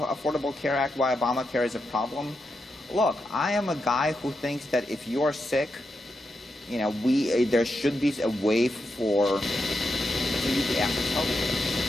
Care Act, why Obamacare is a problem? Look, I am a guy who thinks that if you're sick, there should be a way for you to access health care.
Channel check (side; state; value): both; normal; correlation 0.86